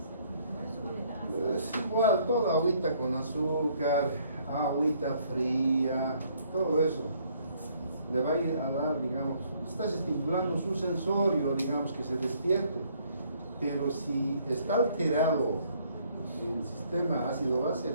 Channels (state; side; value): inverted; both; correlation -0.65